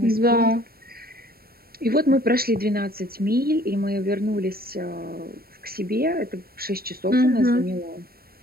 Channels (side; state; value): left; late; 0.44 ms